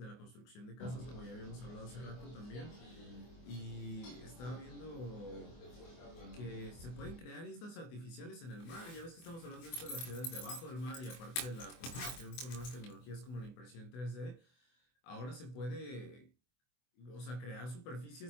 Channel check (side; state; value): right; late; 24 ms